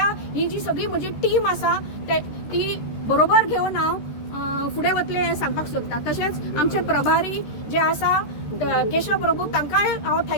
जी सगळी म्हजी टीम आसा ती बरोबर घेवन हांव फुडें वतलें हें सांगपाक सोदता. तशेंच आमचे प्रभारी जे आसा केशव प्रभू तांकांय हांव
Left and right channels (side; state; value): right; late; 13 ms